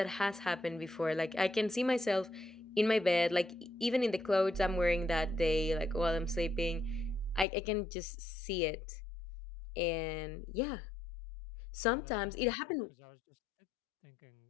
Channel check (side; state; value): right; drops out; at 7.5 s